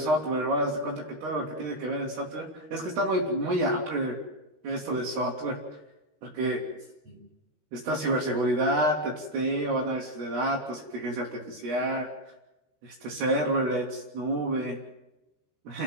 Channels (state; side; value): late; left; 13 ms